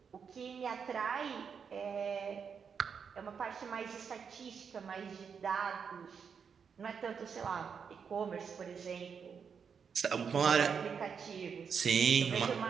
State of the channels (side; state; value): left; quieter; 6.5 dB